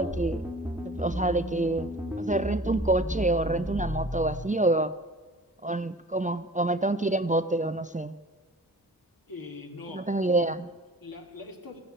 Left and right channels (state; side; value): normal; both; correlation 0.45